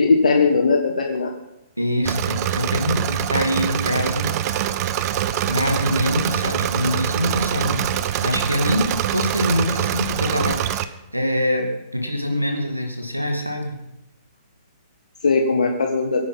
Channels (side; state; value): both; inverted; correlation -0.62